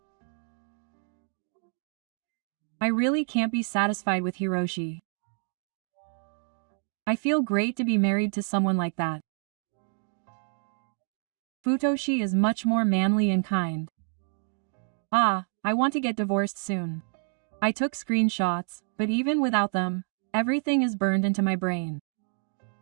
I really can't be satisfied with Hiroshi. I feel great to be married to someone like that. Futoshi is much more manly and kind. I want to get divorced soon. I took screenshots, but even without them, everything is burned into my brain.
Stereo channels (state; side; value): silent; left; 59 dB below the other